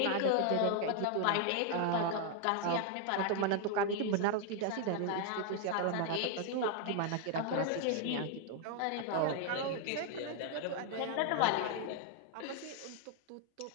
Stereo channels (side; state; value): both; different; correlation 0.00